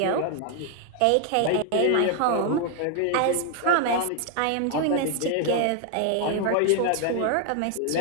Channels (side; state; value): both; different; correlation 0.00